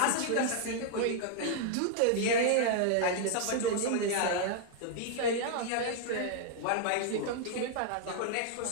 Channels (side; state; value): both; different; correlation 0.00